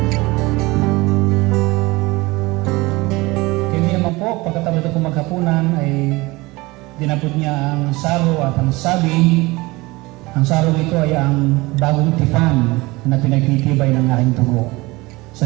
Pagkatapos na po maghapunan ay dinapot niya ang saro at ang sabi, ang saro ito ay ang bagong tipan na pinagtitibay ng aking dugo.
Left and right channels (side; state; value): left; quieter; 22.1 dB